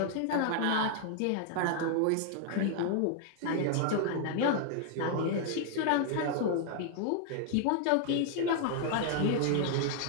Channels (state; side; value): different; both; correlation 0.00